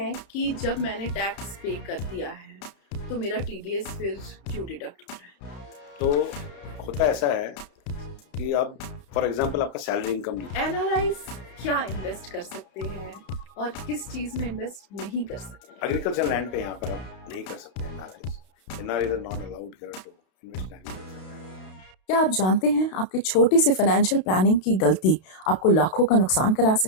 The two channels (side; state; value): right; late; 32 ms